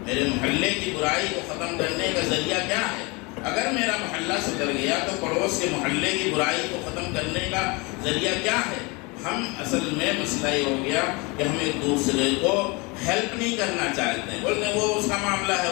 میرے محلے کی برائی کو ختم کرنے کا ذریعہ کیا ہے۔ اگر میرا محلہ سدھر گیا تو پڑوس کے محلے کی برائی کو ختم کرنے کا ذریعہ کیا ہے۔ ہم اصل میں مسئلہ یہ ہو گیا کہ ہم ایک دوسرے کو ہیلپ نہیں کرنا چاہتے ہیں، بولتے ہیں وہ اس کا معاملہ ہے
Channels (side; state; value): right; quieter; 27.4 dB